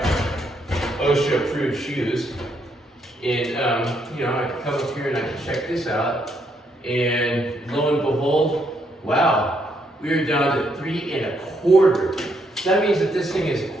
OSHA-approved shoes. And you know, I can come up here and I can check this out. And lo and behold, wow. We're down to 3.25. That means that this thing is a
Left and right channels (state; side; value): normal; both; correlation 0.75